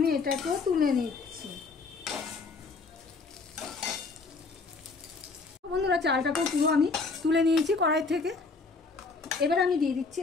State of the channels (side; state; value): right; quieter; 4.2 dB